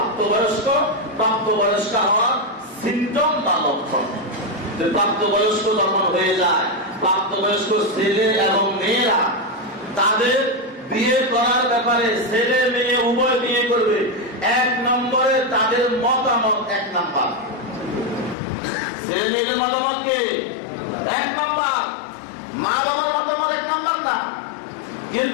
হওয়ার সিমটম বা লক্ষণ। যে প্রাপ্তবয়স্ক যখন হয়ে যায়, প্রাপ্তবয়স্ক ছেলে এবং মেয়েরা তাদের বিয়ে করার ব্যাপারে ছেলে মেয়ে উভয় বিয়ে করবে, এক নম্বরে তাদের মতামত এক নাম্বার। ছেলে মেয়েদের মতামত কে এক নাম্বার, মা বাবার মতামত এক নাম্বার না।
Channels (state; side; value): drops out; right; at 18.4 s